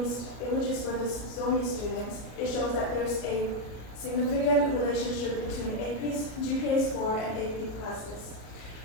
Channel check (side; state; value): right; late; 33 ms